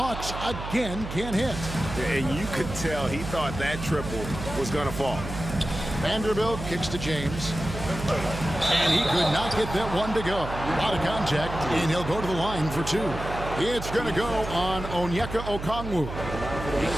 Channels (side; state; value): right; noise; hum, 8 dB below the sound